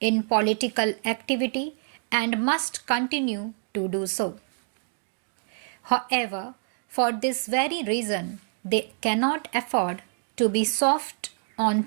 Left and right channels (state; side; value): silent; left; 55 dB below the other